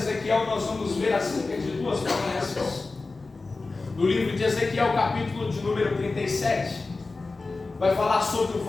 nós vamos ver acerca de 2 promessas. No livro de Ezequiel, capítulo de número 37, vai falar sobre o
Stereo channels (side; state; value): right; quieter; 3.7 dB